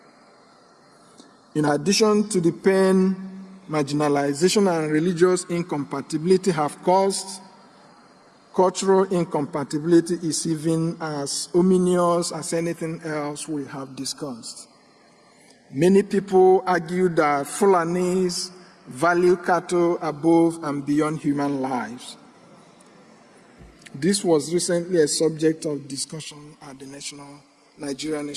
In addition to the pain, marginalization and religious incompatibility have caused, cultural incompatibility is even as ominous as anything else we have discussed. Many people argue that Fulanis value cattle above and beyond human lives. This was recently a subject of discussion at the Nigeria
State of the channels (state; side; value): identical; both; correlation 1.00